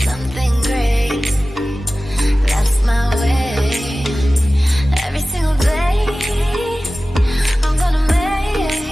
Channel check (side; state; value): both; normal; correlation 0.96